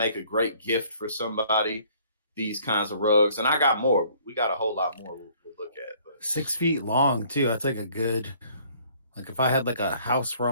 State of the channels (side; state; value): both; inverted; correlation -0.59